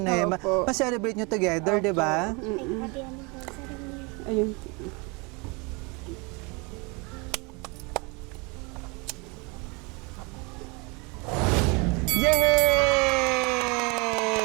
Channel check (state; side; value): quieter; left; 29.2 dB